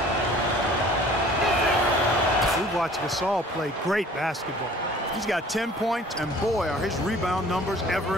We watched Gasol play great basketball. He's got 10 points, and boy, are his rebound numbers ever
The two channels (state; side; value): normal; both; correlation 0.50